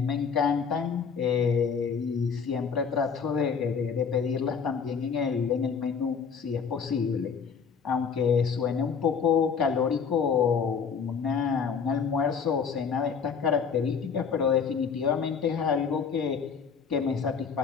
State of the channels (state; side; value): quieter; right; 6.2 dB